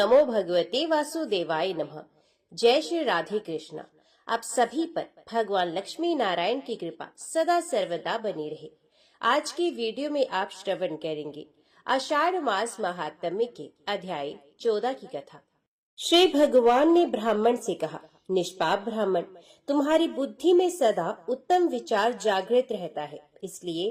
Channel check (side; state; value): both; identical; correlation 1.00